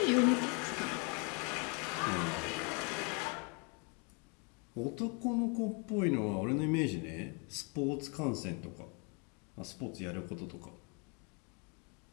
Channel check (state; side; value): quieter; right; 34.6 dB